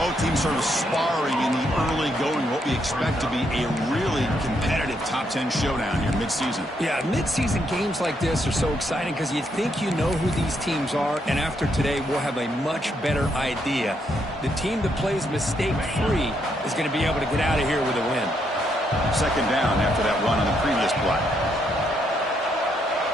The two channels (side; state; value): both; normal; correlation 0.76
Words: teams sort of sparring in the early going, what we expect to be a really competitive top 10 showdown here mid-season. Yeah, mid-season games like this are so exciting because you think you know who these teams are, and after today we'll have a much better idea. The team that plays mistake-free is going to be able to get out of here with a win. Second down after that run on the previous play.